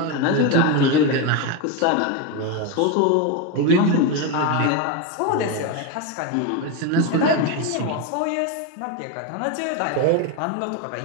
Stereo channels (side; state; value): both; different; correlation 0.03